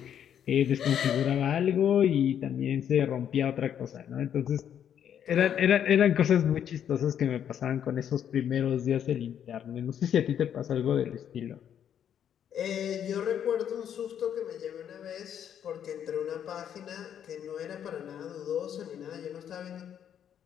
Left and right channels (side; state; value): right; quieter; 9.3 dB